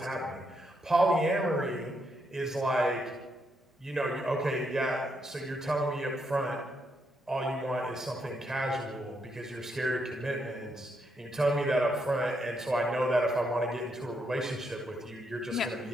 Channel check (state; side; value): normal; both; correlation 0.78